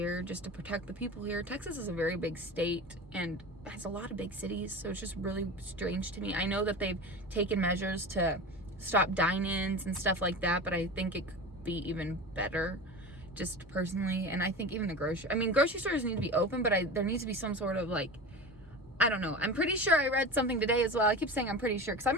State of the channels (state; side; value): normal; both; correlation 0.30